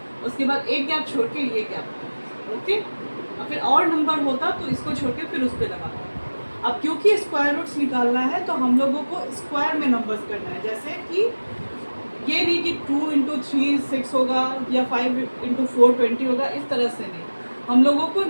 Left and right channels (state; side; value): inverted; both; correlation -1.00